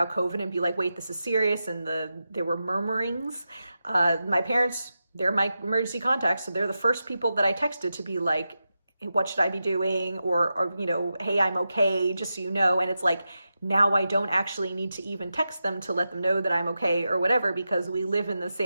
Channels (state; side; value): inverted; both; correlation -0.90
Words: COVID and be wait, this is serious, and there were murmurings, my parents, they're my emergency contacts, so they're the first people that I texted to be what should I be doing? Or hey, I'm okay, just so you know. And it's now I don't actually need to even text them to let them know that I'm okay or whatever, because we live in the